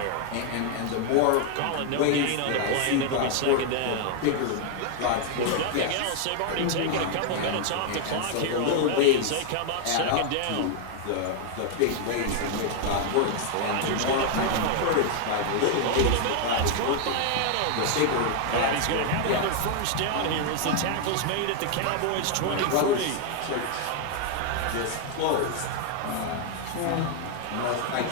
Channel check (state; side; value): different; both; correlation 0.00